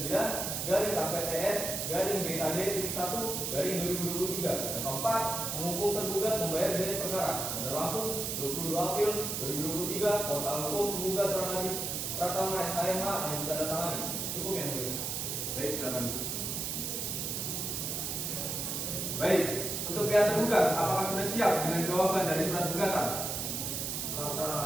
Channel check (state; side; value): noise; right; hiss, 2 dB below the sound